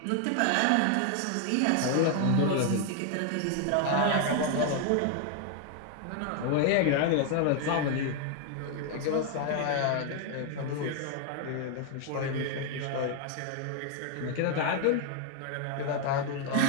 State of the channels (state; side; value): different; both; correlation 0.00